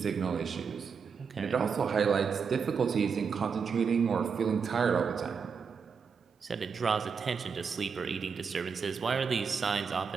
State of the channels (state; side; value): quieter; left; 6.0 dB